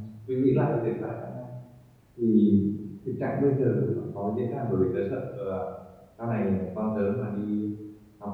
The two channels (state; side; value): identical; both; correlation 1.00